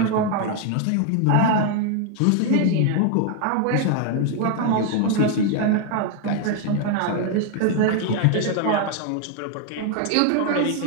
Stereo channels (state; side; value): different; both; correlation 0.00